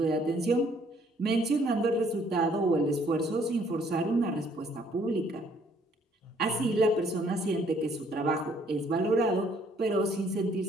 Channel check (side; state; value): both; normal; correlation 0.63